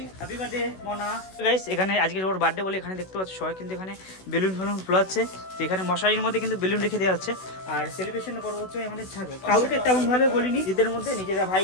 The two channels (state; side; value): late; right; 16 ms